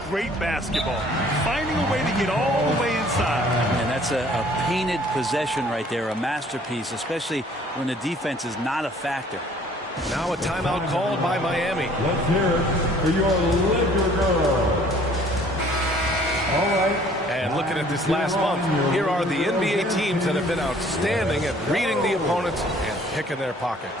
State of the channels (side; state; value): both; normal; correlation 0.56